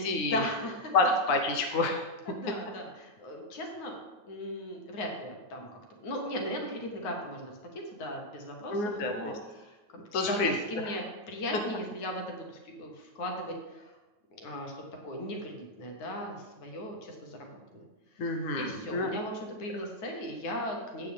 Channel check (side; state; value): right; late; 9.6 ms